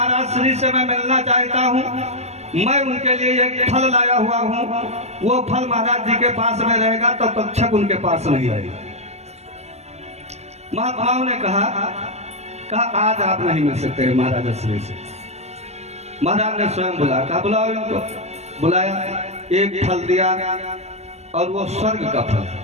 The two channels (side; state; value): left; late; 0.31 ms